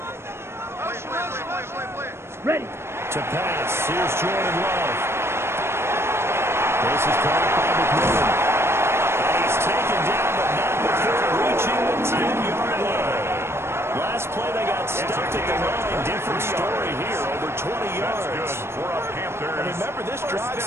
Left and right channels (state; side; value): late; left; 0.12 ms